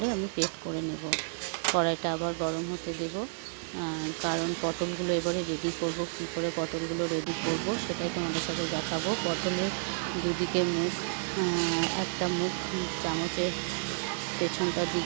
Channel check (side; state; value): left; silent; digital silence